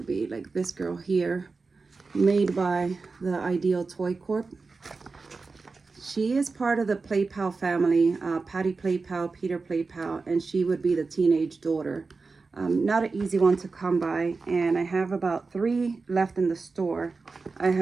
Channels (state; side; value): quieter; left; 4.2 dB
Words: be like this girl here, made by the Ideal Toy Corp. She is part of the Play Pal family, Patty Play Pal, Peter Play Pal, and she would be the teenage daughter. Not an easy one to come by, and I have about 3 left in the store. I